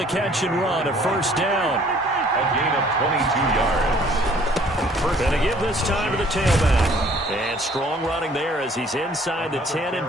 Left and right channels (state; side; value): normal; both; correlation 0.57